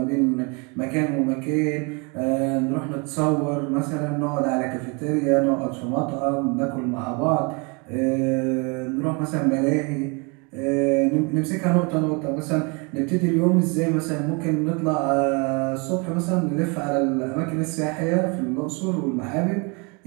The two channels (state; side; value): quieter; left; 31.4 dB